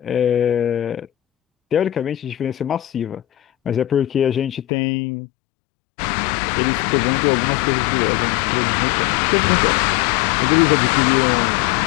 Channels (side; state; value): right; drops out; at 4.7 s